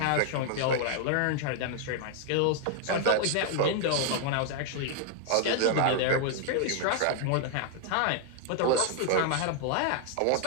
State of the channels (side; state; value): both; different; correlation 0.00